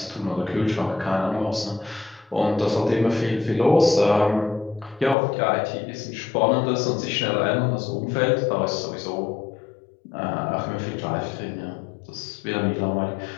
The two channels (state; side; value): drops out; right; at 5.2 s